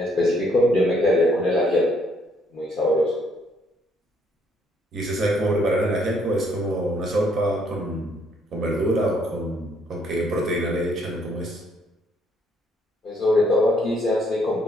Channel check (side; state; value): both; normal; correlation 0.68